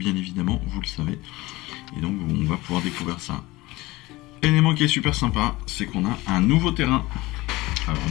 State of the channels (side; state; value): right; quieter; 20.2 dB